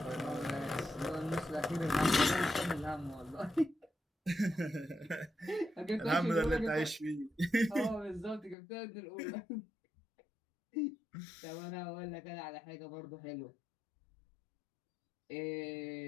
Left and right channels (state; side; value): drops out; right; at 8.6 s